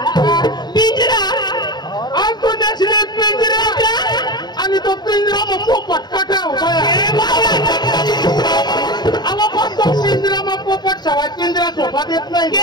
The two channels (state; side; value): late; right; 0.20 ms